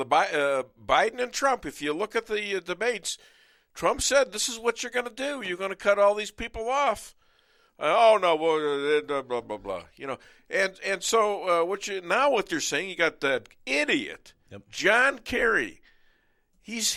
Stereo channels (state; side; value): identical; both; correlation 1.00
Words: and Trump. If you look at the debates, Trump said, "This is what you're going to do. You're going to cut all these people off." Oh no, blah blah blah. And so what you're saying? You got that idiot, John Kerry.